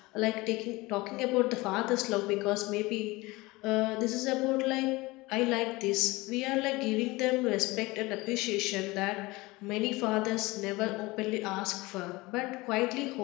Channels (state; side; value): quieter; right; 21.9 dB